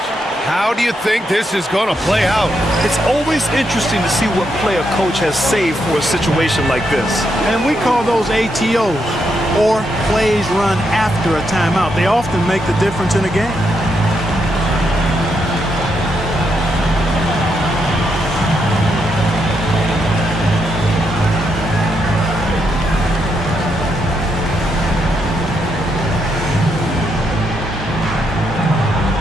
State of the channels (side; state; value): both; normal; correlation 0.80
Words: How do you think this is going to play out? It's always interesting to see what play a coach has saved for a situation like this. And we call those ATOs, or plays run after a timeout. They often make the difference in a game.